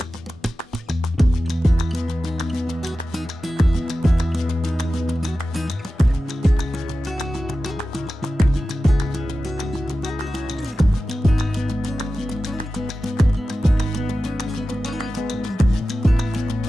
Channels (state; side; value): normal; both; correlation 0.94